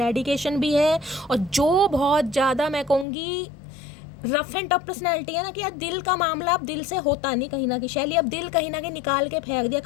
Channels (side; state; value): right; drops out; at 3.1 s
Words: भी है, और जो बहुत ज़्यादा मैं कहूँगी रफ एंड टफ पर्सनैलिटी है ना, कि यार दिल का मामला अब दिल से होता नहीं कहीं ना कहीं, शैली अब दिल कहीं ना कहीं निकाल के फेंक दिया,